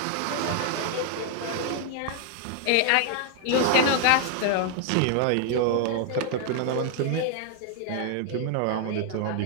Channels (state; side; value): different; both; correlation 0.00